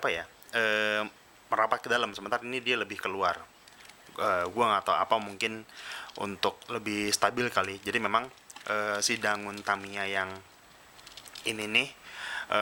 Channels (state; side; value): identical; both; correlation 1.00